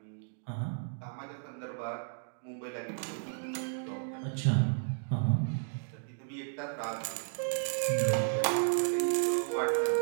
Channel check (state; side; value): silent; left; digital silence